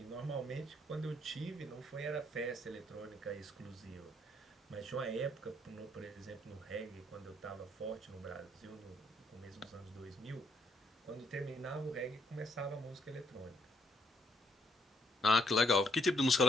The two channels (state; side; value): normal; both; correlation 0.71